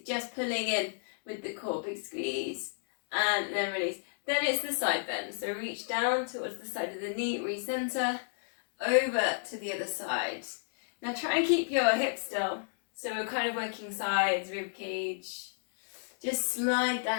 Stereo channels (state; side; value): silent; right; digital silence